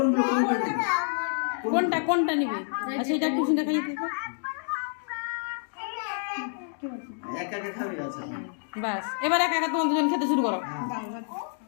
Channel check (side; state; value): right; silent; digital silence